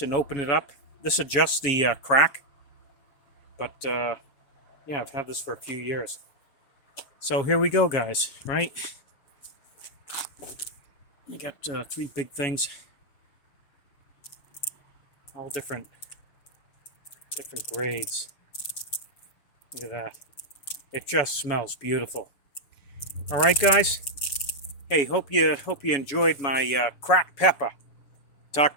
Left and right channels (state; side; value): late; right; 7.1 ms